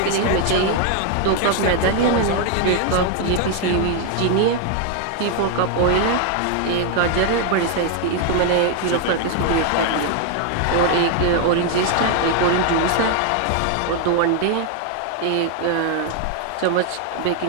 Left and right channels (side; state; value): both; different; correlation 0.00